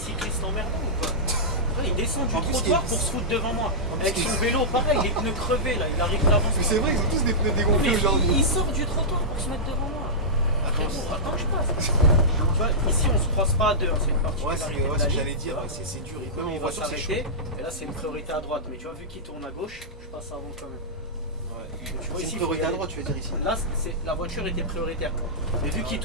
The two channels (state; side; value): normal; both; correlation -0.13